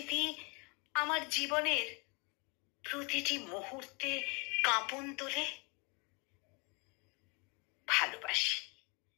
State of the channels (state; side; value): quieter; right; 31.0 dB